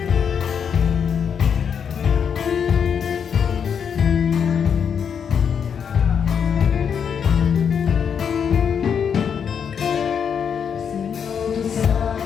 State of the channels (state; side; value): quieter; right; 7.3 dB